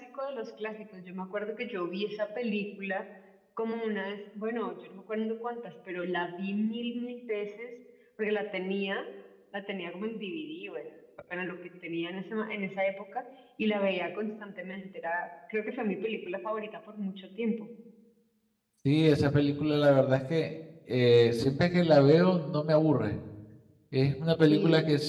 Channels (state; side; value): identical; both; correlation 1.00